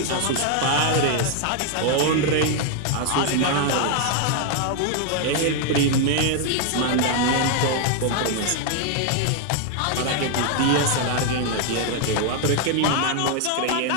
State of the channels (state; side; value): different; both; correlation 0.00